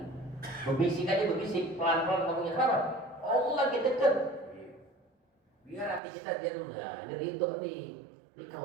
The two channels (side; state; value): left; drops out; at 6.0 s